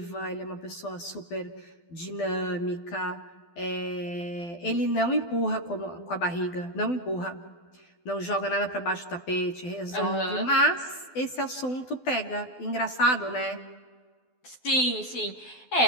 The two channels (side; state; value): right; late; 12 ms